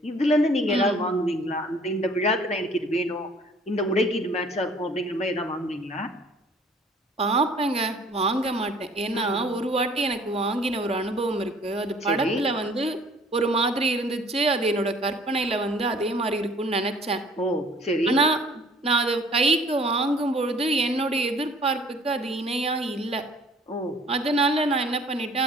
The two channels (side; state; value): both; normal; correlation 0.54